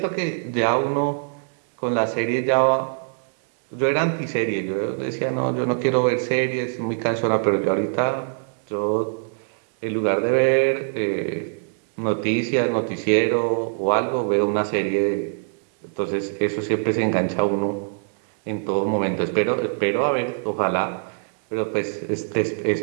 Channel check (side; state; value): left; silent; digital silence